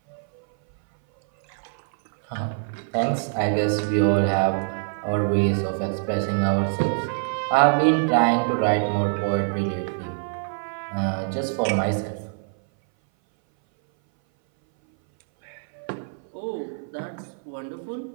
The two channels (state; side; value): silent; left; 59 dB below the other